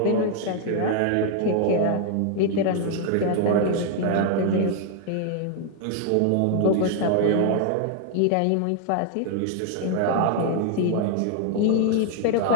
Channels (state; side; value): different; both; correlation 0.00